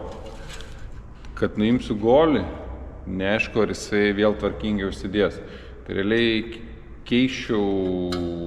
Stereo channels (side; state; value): both; identical; correlation 1.00